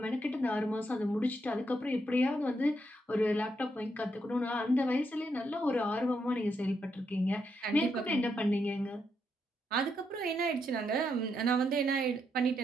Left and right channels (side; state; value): both; normal; correlation 0.79